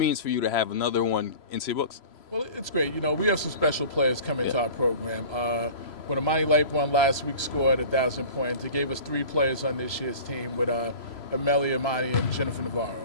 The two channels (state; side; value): late; right; 3.0 ms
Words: for you to have another one into your books. Well, it's great. We have some special players coming to our program. When Amani Lightborn last week scored 1,000 points, it gave us three players on this year's team with Amelia, Amani, and Jennifer Navarro.